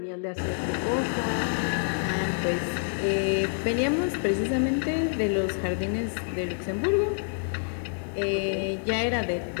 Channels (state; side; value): silent; right; digital silence